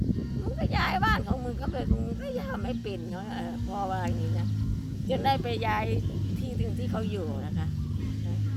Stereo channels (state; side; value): identical; both; correlation 1.00